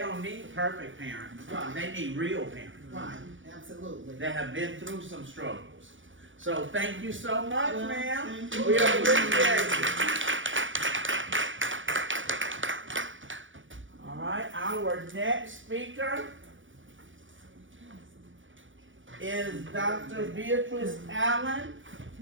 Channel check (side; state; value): left; late; 0.56 ms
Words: need perfect parents. Right. They need real parents. Right, absolutely. That have been through some struggles. So thank you so much, Well, ma'am. thank you. We appreciate it. All right, our next speaker is Dr. Beatrice Allen.